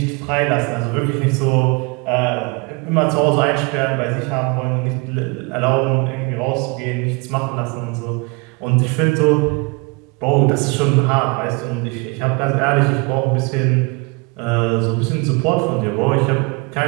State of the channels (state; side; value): quieter; left; 29.2 dB